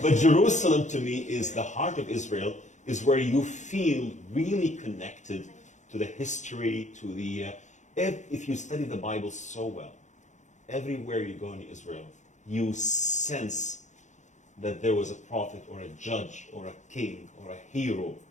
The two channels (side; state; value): right; late; 0.35 ms